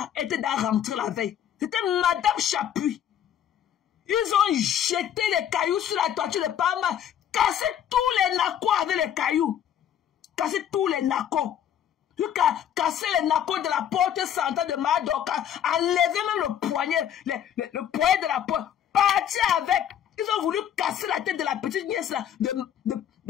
Elle était dans rentrer la veille. C'était Madame Chapuis. Ils ont jeté les cailloux sur la toiture de Paramax. Cassé tous les nacos avec les cailloux. Cassé tous les nacos. Jusqu'à casser les nacos de la porte centrale de Madoka. Enlever même le poignet. Le poignet de la porte. Partir avec. Ils ont voulu casser la tête de la petite nièce là,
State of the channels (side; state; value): right; quieter; 9.8 dB